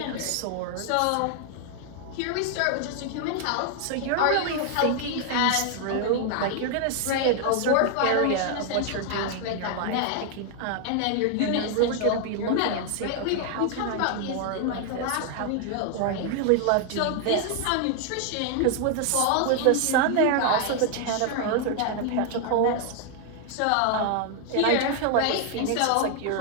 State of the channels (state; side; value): different; both; correlation 0.00